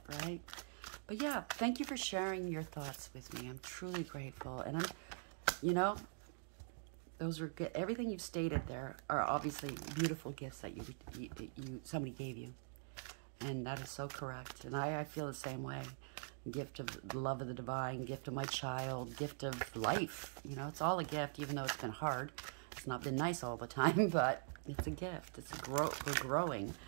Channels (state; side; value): silent; left; digital silence